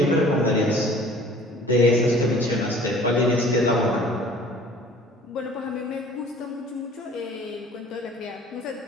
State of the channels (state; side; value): normal; both; correlation 0.50